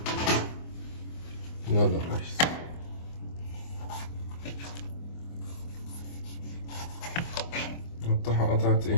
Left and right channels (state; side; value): late; right; 24 ms